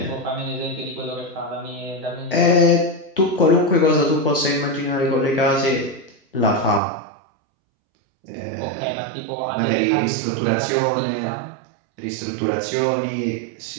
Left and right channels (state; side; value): drops out; left; at 6.8 s